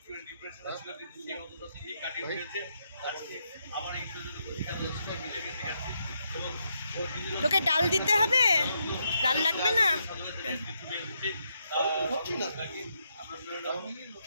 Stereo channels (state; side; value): inverted; both; correlation -0.79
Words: তোকে ডাল দিতে হবে, ডাল লাগবে না?